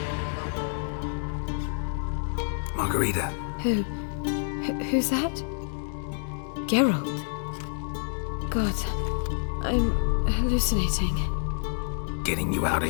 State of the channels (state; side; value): silent; right; digital silence